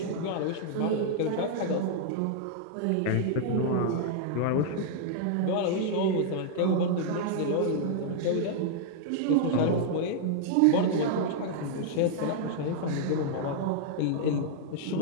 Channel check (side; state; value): both; different; correlation -0.01